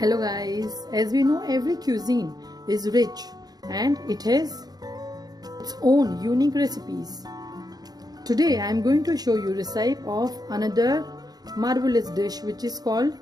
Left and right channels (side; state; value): left; late; 0.19 ms